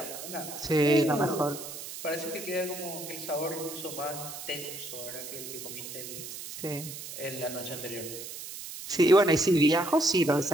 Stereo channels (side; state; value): right; noise; hiss, 10 dB below the sound